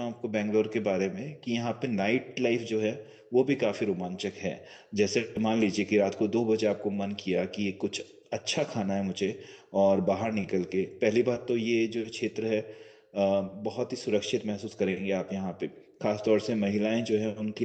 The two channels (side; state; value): both; identical; correlation 1.00